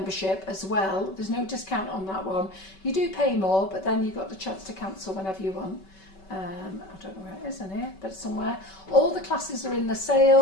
as well. There's no discount on that one. You do pay more, but then you've got the chance to cancel whenever you want. I don't know where it is in here, but somewhere. All the classes are in the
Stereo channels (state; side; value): late; right; 5.2 ms